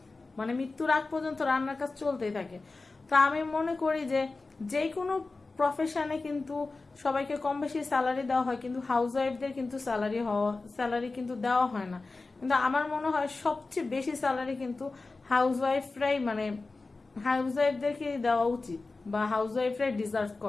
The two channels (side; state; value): right; quieter; 3.6 dB